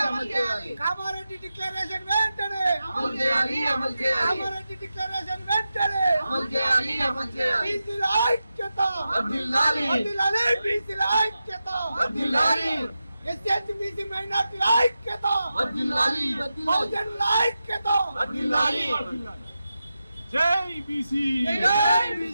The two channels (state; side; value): inverted; both; correlation -0.91